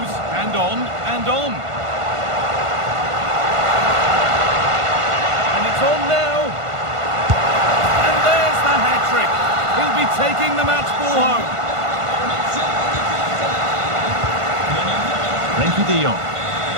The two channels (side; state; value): left; late; 1.5 ms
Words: and on, and on. And it's on now. And there's the hat-trick. He'll be taking the match ball home. Frenkie de Jong.